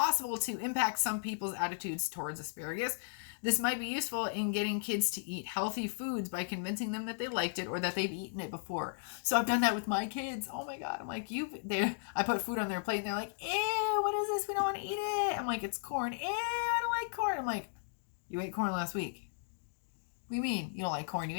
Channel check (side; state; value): right; silent; digital silence